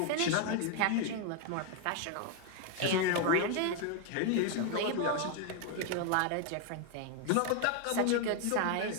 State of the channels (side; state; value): both; different; correlation 0.01